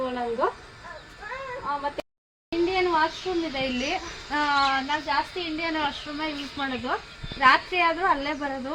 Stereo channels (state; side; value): identical; both; correlation 1.00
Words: ಒಳಗೂ. ಮತ್ತೆ ಇಂಡಿಯನ್ ವಾಶ್ರೂಮ್ ಇದೆ ಇಲ್ಲಿ. ನಾವು ಜಾಸ್ತಿ ಇಂಡಿಯನ್ ವಾಶ್ರೂಮೇ ಯೂಸ್ ಮಾಡೋದು. ರಾತ್ರಿ ಆದರೂ ಅಲ್ಲೇ ಬರೋದು,